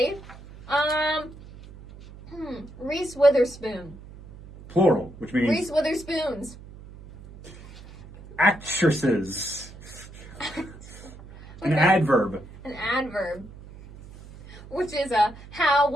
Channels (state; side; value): noise; right; hum, 18 dB below the sound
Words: Reese Witherspoon. Plural, which means... Reese Witherspoons. Actresses. An Okay. adverb. An adverb. Which is a how,